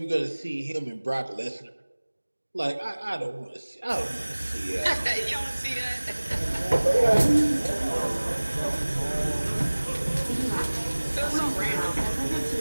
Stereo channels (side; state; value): both; inverted; correlation -1.00